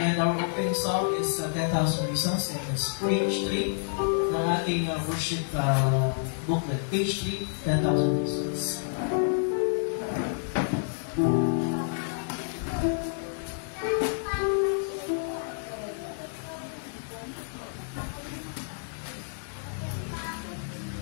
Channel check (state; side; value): silent; right; digital silence